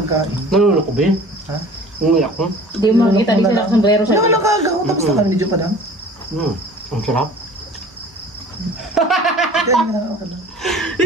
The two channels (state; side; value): normal; both; correlation 0.45